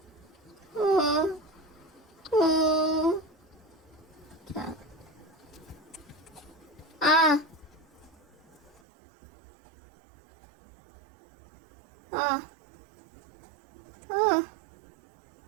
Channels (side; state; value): left; drops out; at 8.8 s